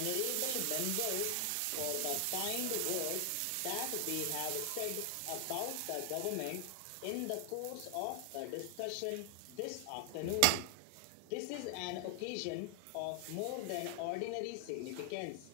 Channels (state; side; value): different; both; correlation 0.00